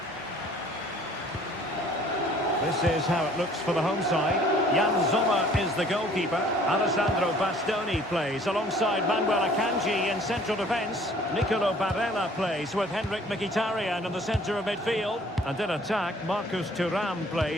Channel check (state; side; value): normal; both; correlation 0.55